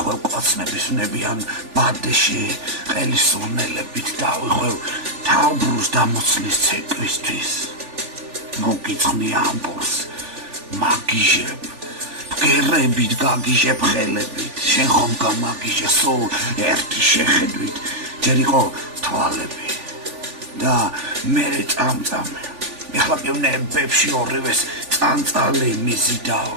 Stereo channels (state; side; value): late; left; 3.4 ms